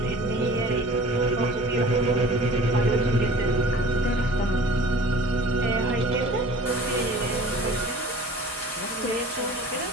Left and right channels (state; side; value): normal; both; correlation 0.45